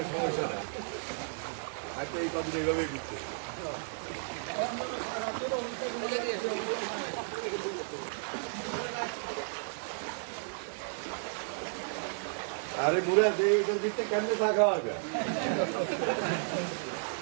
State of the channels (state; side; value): silent; left; 56 dB below the other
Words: সমস্যা না, হয়তো এই পাখি এইভাবেই ঘুরতে। আরে বুড়া যে এটার ভিতরে কেমনে থাকা হবে?